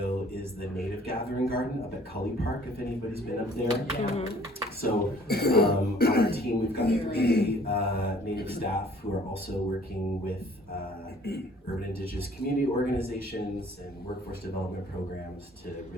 is the native gathering garden up at Cully Park, if anybody's been up there. Mm-hmm. So on our team, we've got 3 native staff who are also working with urban indigenous community organizations and workforce development programs to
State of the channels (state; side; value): normal; both; correlation 0.56